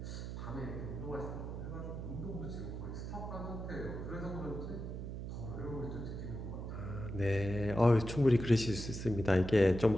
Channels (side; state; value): right; noise; hum, 6 dB below the sound